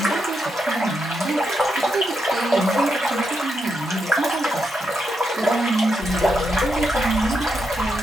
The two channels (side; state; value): both; normal; correlation 0.83